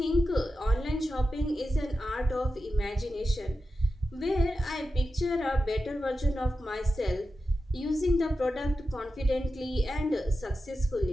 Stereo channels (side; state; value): both; normal; correlation 0.91